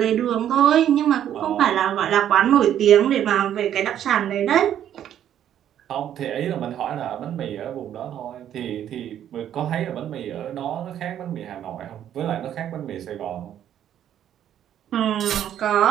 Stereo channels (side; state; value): left; quieter; 10.5 dB